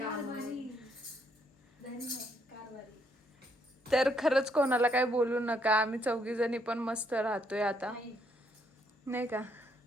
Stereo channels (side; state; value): both; normal; correlation 0.72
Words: तर खरंच कोणाला काय बोलू नका, आम्ही 4 जणी पण मस्त राहतोय आता, नाही का.